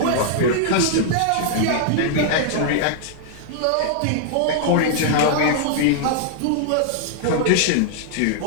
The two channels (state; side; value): different; both; correlation -0.01